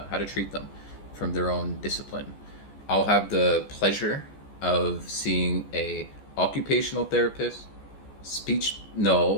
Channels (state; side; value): late; right; 14 ms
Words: how to treat them from their own discipline. I'll have the pleasure of seeing a occupational therapist,